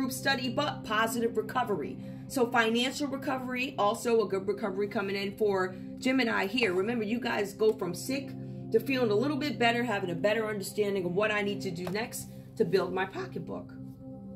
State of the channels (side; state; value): both; identical; correlation 1.00